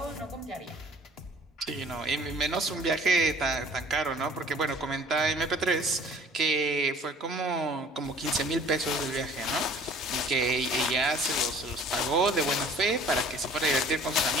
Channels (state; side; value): normal; both; correlation 0.51